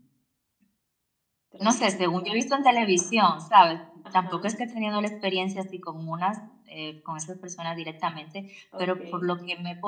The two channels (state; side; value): identical; both; correlation 1.00